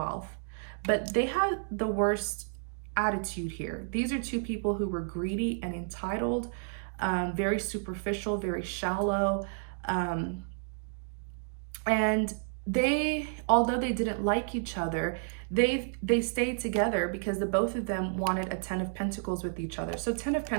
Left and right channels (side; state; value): left; silent; digital silence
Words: but they had the worst attitude here. These are two people who were greedy and entitled, very superficial, very shallow. And they, although they didn't like each other, they stayed together because the both of them wanted a Ten of Pentacles with each other. So Ten of